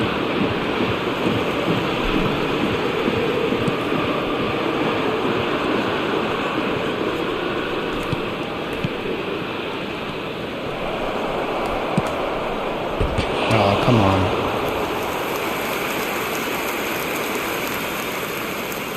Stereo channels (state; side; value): identical; both; correlation 1.00